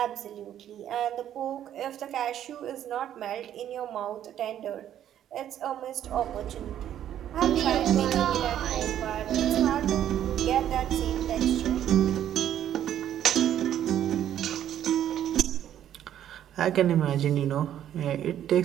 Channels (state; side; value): quieter; left; 10.8 dB